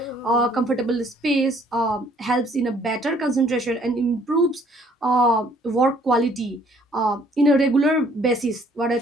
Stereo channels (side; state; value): both; normal; correlation 0.61